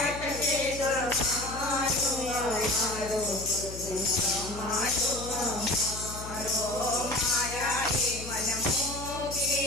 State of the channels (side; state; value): left; noise; hum, 11 dB below the sound